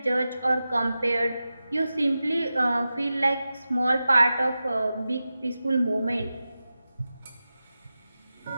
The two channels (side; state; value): both; inverted; correlation -0.93